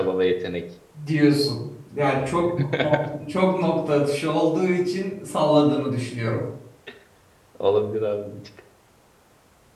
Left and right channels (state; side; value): identical; both; correlation 1.00